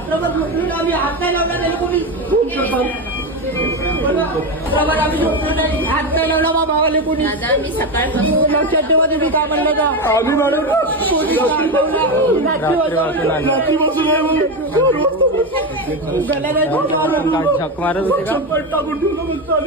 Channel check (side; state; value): both; normal; correlation 0.15